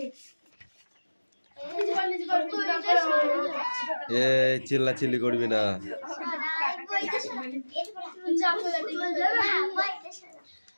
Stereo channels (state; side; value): inverted; both; correlation -1.00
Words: এ চিল্লাচিল্লি করবি না।